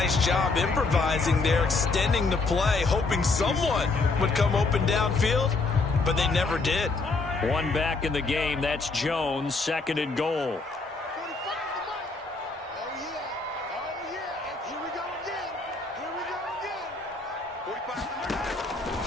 job improvising there, extending the play, hoping someone would come open downfield, but they never did. One back in the game. That's Jones, 2nd and goal.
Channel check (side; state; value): right; quieter; 3.7 dB